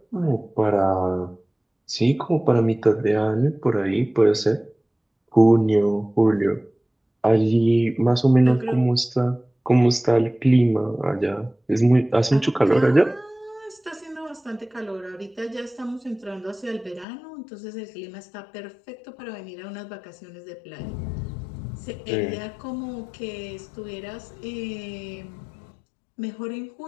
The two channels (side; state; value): right; drops out; at 17.1 s